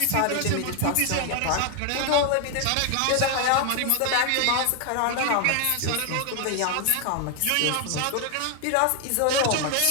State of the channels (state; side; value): different; both; correlation 0.01